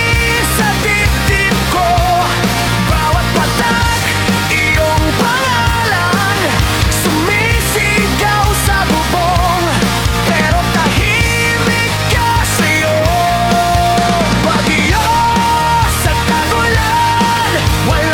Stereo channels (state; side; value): identical; both; correlation 1.00